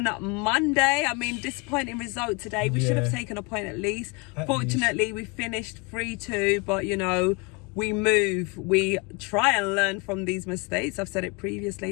Monday. I mean, disappointing result today. We should have taken a point at least. Fortunately, we finished 3-2, but, you know, we move. We try and learn from these mistakes. I've said it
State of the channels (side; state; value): right; quieter; 29.7 dB